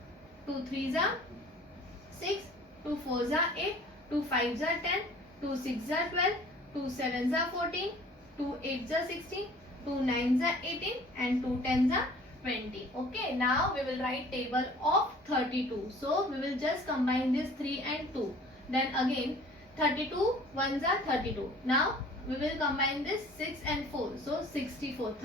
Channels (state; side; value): normal; both; correlation 0.49